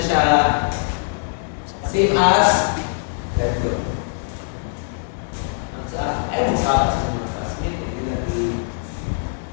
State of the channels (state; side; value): silent; right; 64 dB below the other